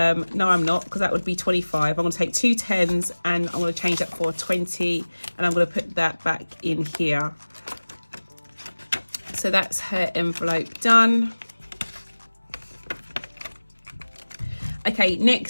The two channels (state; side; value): inverted; both; correlation -1.00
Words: I'm not, because that would be 25. I'm going to take 2 10s and I'm going to change that for 20, and I'm going to put that back in here. So that's her envelope done. Okay,